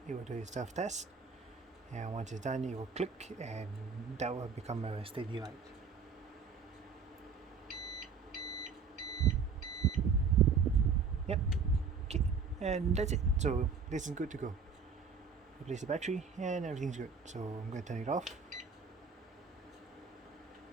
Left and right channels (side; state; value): left; quieter; 5.4 dB